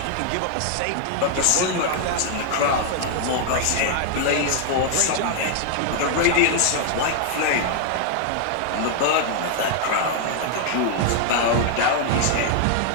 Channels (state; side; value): different; both; correlation 0.00